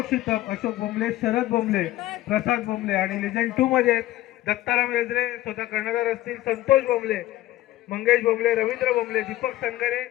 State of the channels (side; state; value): right; quieter; 15.4 dB